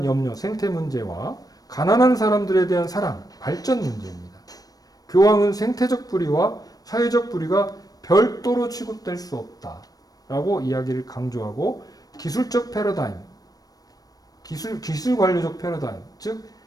염려, 생태 문제와 가난한 사람들에 대한 사랑, 발전 문제입니다. 교황은 생태적 불의와 사회적 불의가 별도로 취급될 수 없다라고 이야기를 강조하고 기술적 패러다임, 기술 관료적 패러다임, 즉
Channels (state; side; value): late; right; 0.18 ms